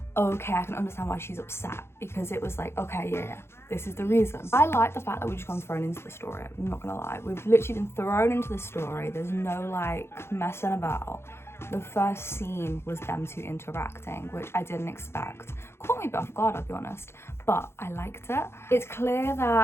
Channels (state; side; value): late; right; 0.12 ms